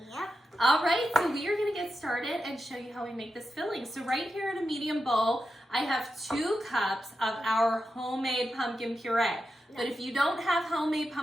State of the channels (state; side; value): normal; both; correlation 0.89